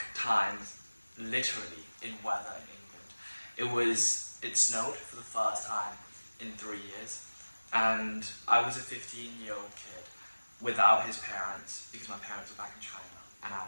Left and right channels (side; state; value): both; inverted; correlation -1.00